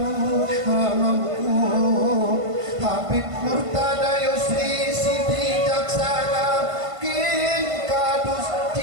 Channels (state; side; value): late; left; 1.5 ms